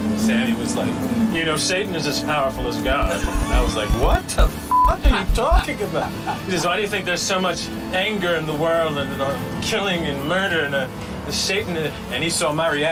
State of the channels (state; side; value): identical; both; correlation 1.00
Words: Sammy was like, you know, Satan is as powerful as God. I was like, what the f*** are you talking about? He says, why do you think there's so much anger in the world and killing and murder and Satan? And he saw my